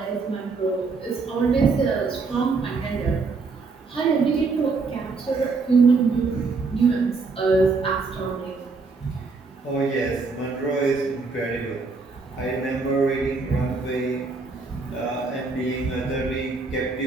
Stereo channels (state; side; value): quieter; left; 4.2 dB